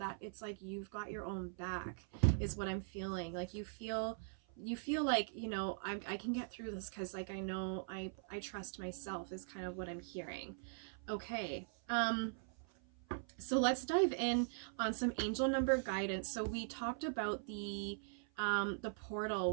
it's like you've got your own back is what I'm feeling. Like you feel like, you know, I can get through this because like I know I trust myself is kind of what I'm hearing. Okay, so let's dive in on some angel number guidance. So we talked about the portal.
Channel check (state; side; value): silent; left; 50 dB below the other